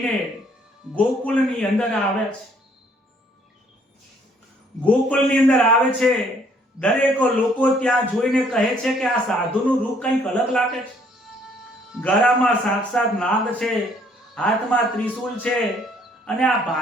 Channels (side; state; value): both; normal; correlation 0.63